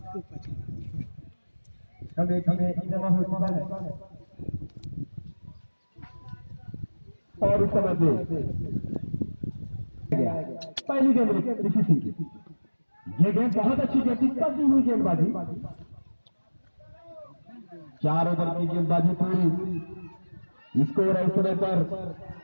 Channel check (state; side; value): inverted; both; correlation -1.00